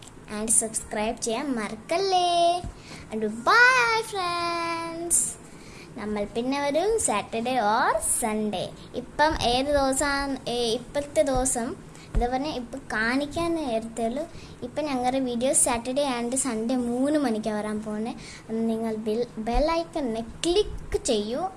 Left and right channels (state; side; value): identical; both; correlation 1.00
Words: ആൻഡ് സബ്സ്ക്രൈബ് ചെയ്യാൻ മറക്കല്ലേ. And bye friends. നമ്മൾ പിന്നെ വരും സാറ്റർഡേ ഓർ സൺഡേ. ഇപ്പം ഏത് ദിവസമാണ് ഇപ്പോഴത്തെ ദിവസം എന്താ പറഞ്ഞാൽ ഇപ്പം കാണിക്കാൻ നേരത്തേയുള്ളൂ. ഇപ്പം ഞങ്ങളുടെ വീഡിയോ സാറ്റർഡേ ആൻഡ് സൺഡേ 3 മണിക്കാണ് വരാൻ പോകുന്നത്. നിങ്ങൾ ബെല്ലൈക്കണിനെ ക്ലിക്ക് ചെയ്യൂ.